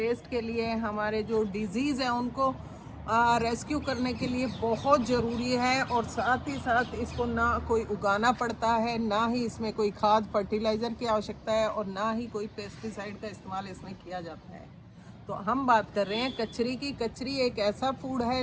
के लिए, हमारे जो डिजीज़ हैं उनको रेस्क्यू करने के लिए बहुत ज़रूरी है। और साथ ही साथ इसको ना कोई उगाना पड़ता है, ना ही इसमें कोई खाद फर्टिलाइज़र की आवश्यकता है और ना ही कोई पेस्टिसाइड का इस्तेमाल इसमें किया जाता है। तो हम बात कर रहे हैं कचरी की। कचरी एक ऐसा फूड है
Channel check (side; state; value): both; identical; correlation 1.00